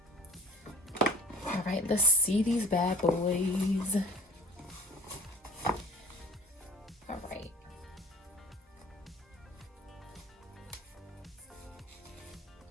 All right, let's see these bad boys. All right.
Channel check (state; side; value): normal; both; correlation 0.45